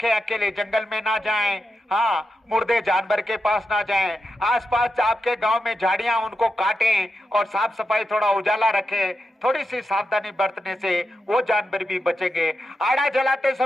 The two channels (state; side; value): normal; both; correlation 0.88